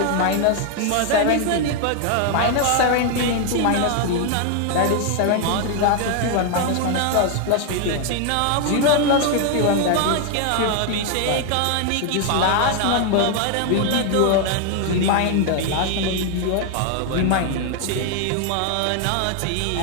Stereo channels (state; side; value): different; both; correlation 0.00